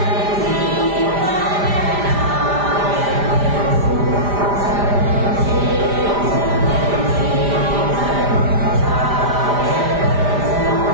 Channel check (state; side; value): late; left; 5.0 ms